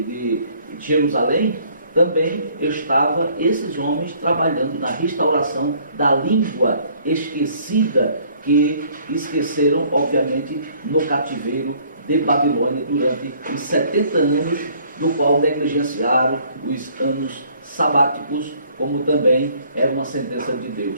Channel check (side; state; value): both; inverted; correlation -0.59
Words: Jerusalém. Também estavam esses homens trabalhando na restauração da língua esquecida, que esqueceram, obviamente, no cativeiro de Babilônia durante os 70 anos, do qual negligenciaram os anos sabáticos, como também era uma sentença de